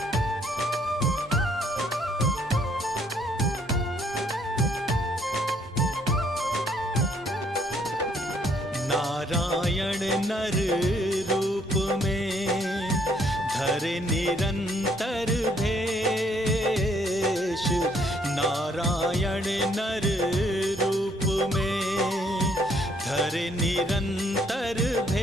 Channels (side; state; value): both; normal; correlation 0.66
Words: नारायण नर रूप में, धरे निरंतर भेष। नारायण नर रूप में, धरे निरंतर